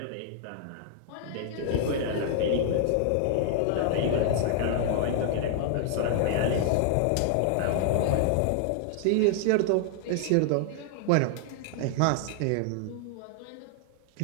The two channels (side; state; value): both; different; correlation -0.01